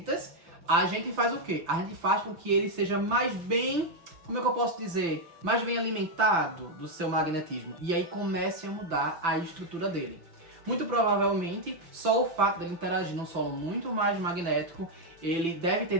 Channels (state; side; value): late; left; 5.9 ms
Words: a gente faz o quê? A gente faz com que ele seja mais bem, como é que eu posso dizer, mais bem alimentado do seu magnetismo, e aí comece a mudar a estrutura dele. Muito provavelmente, só o fato dele interagir num solo muito mais magnético, ele deve ter